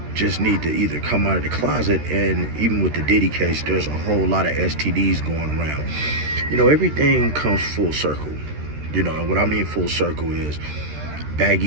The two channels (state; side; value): late; left; 13 ms